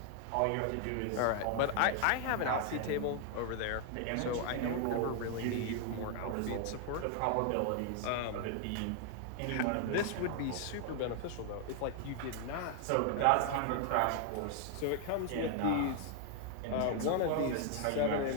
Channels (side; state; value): both; different; correlation 0.00